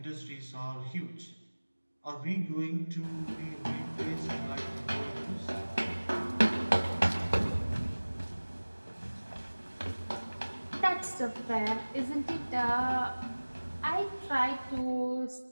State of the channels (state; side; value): inverted; both; correlation -1.00